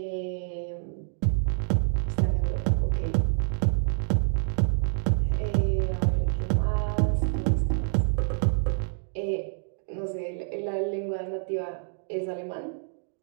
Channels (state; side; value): silent; left; digital silence